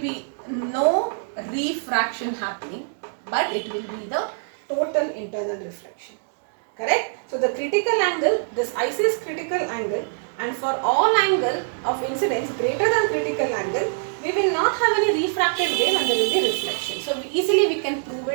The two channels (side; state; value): left; silent; digital silence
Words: no refraction happening, but it will be the total internal reflection, correct? So the critical angle, this IC is critical angle, and for all angle of incidence greater than critical angle, we will not have any refracted wave and there will be reflection. So easily we can prove